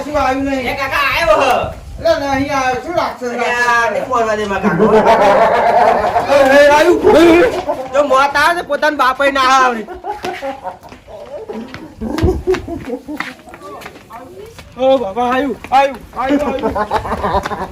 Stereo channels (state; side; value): identical; both; correlation 1.00